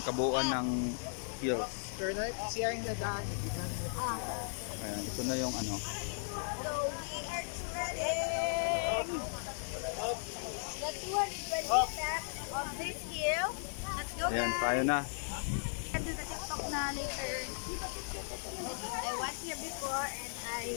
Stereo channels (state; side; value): silent; right; digital silence